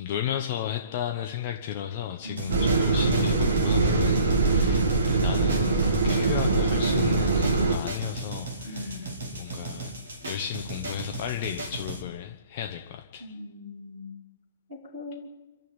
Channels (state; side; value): inverted; both; correlation -0.51